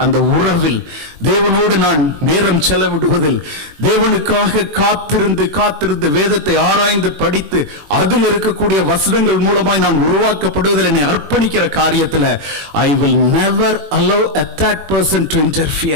அந்த உறவில், தேவனோடு நான் நேரம் செலவிடுவதில், தேவனுக்காக காத்திருந்து வேதத்தை ஆராய்ந்து படித்து அதில் இருக்கக்கூடிய வசனங்கள் மூலமாய் நான் உருவாக்கப்படுவதில் என்னை அர்ப்பணிக்கிற காரியத்தில் I will never allow a third person to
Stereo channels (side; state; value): left; late; 21 ms